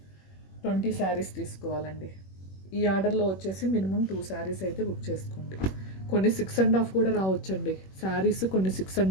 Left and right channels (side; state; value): right; late; 21 ms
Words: 20 శారీస్ తీసుకోవాలండి. ఈ ఆర్డర్లో వచ్చేసి మినిమం 2 శారీస్ అయితే బుక్ చేసుకోండి. కొన్ని 6.5 కూడా రావచ్చండి శారీస్, కొన్ని